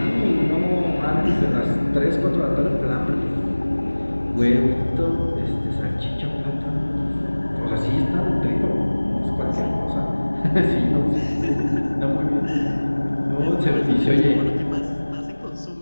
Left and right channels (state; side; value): inverted; both; correlation -1.00